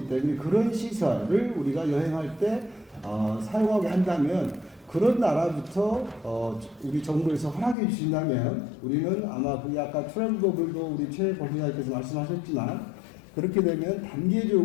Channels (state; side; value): drops out; right; at 7.8 s